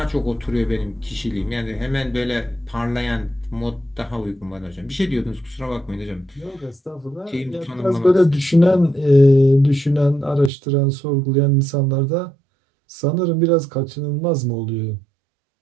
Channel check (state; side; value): drops out; left; at 10.5 s